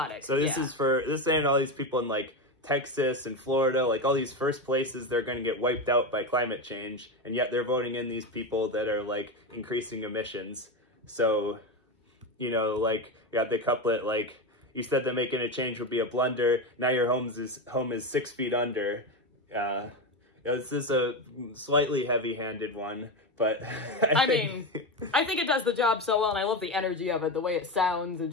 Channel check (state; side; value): normal; both; correlation 0.15